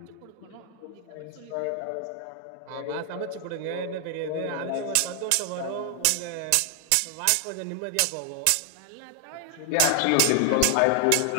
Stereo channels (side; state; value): both; different; correlation 0.00